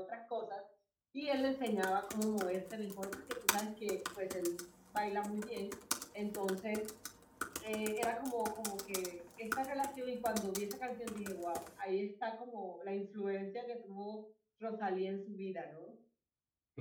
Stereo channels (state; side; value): identical; both; correlation 1.00